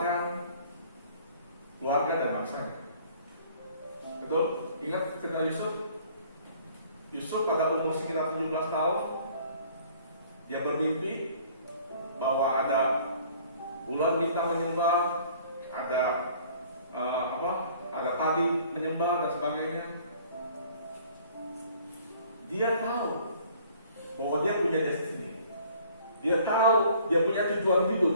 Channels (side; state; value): both; inverted; correlation -0.55